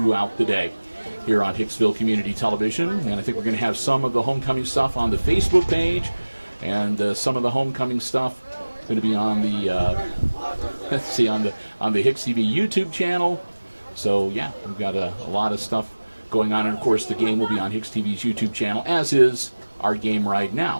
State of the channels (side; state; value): both; inverted; correlation -1.00